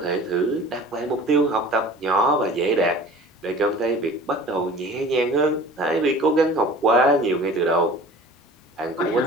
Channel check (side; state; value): both; normal; correlation 0.43